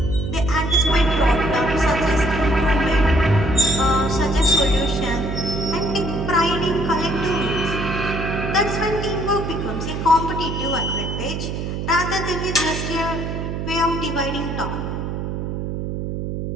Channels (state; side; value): noise; right; hum, 4 dB below the sound